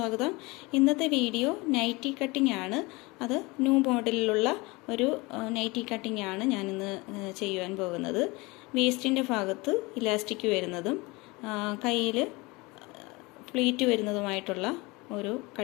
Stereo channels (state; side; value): quieter; right; 24.4 dB